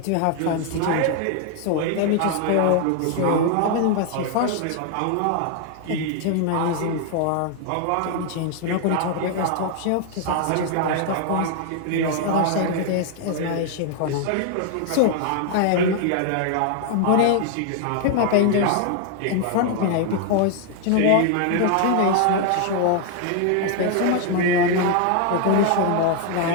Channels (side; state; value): both; different; correlation 0.00